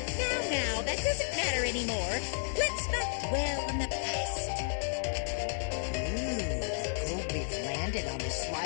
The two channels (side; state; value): right; silent; digital silence